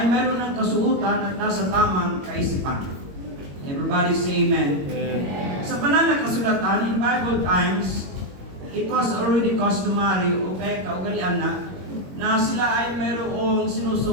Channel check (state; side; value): late; left; 21 ms